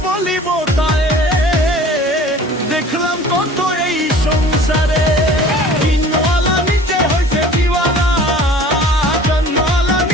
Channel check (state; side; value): normal; both; correlation 0.46